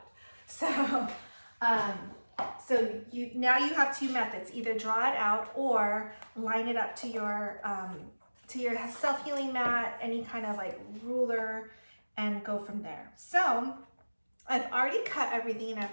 So, now you have two methods: either draw it out or line it up to your self-healing mat, any kind of like ruler, and go from there. So I've already cut everything,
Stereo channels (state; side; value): inverted; both; correlation -1.00